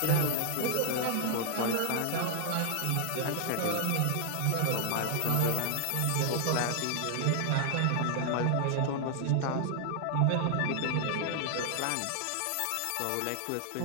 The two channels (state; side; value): different; both; correlation 0.00